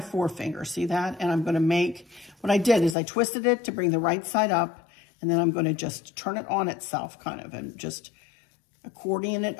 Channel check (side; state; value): right; drops out; at 3.0 s